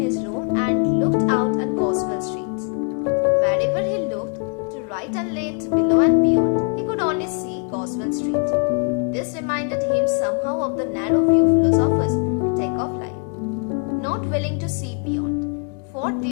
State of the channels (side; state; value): right; quieter; 38.4 dB